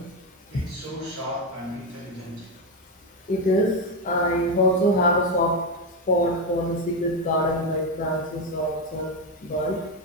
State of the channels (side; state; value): both; normal; correlation 0.09